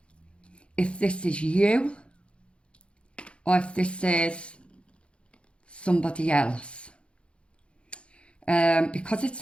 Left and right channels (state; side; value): late; right; 0.058 ms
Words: if this is you or if this is somebody else. Because it's